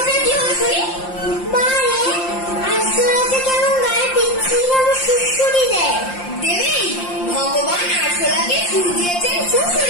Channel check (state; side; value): late; right; 5.7 ms